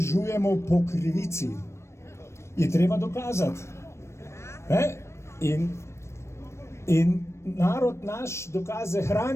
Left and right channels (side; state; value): right; late; 0.13 ms